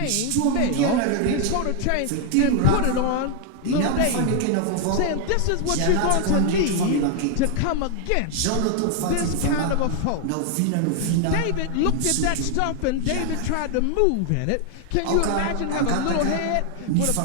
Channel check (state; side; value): different; both; correlation 0.00